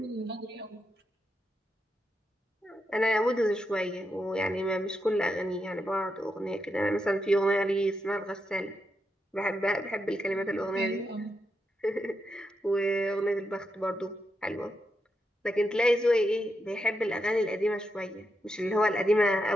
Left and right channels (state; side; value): normal; both; correlation 0.84